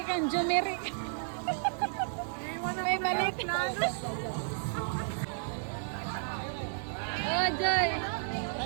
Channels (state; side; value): silent; left; digital silence